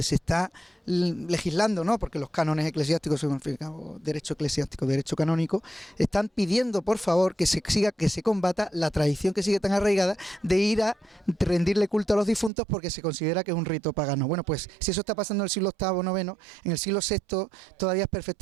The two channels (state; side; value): drops out; left; at 12.5 s